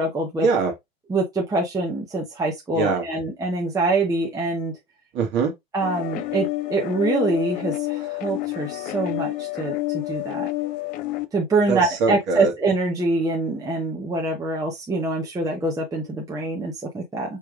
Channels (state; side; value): normal; both; correlation 0.47